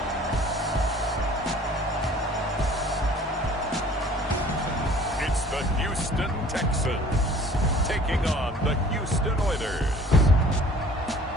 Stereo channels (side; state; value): both; normal; correlation 0.51